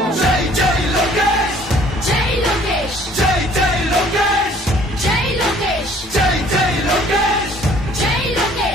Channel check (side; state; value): both; normal; correlation 0.56